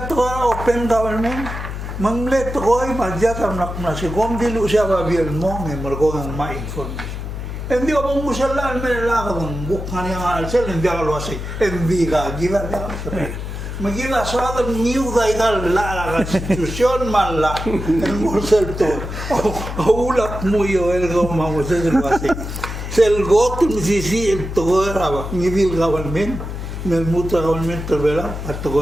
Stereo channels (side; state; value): left; noise; hum, 7 dB below the sound